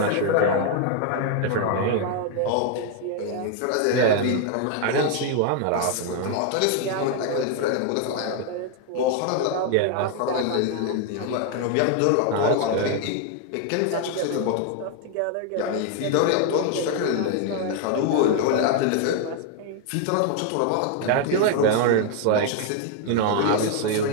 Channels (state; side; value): different; both; correlation 0.00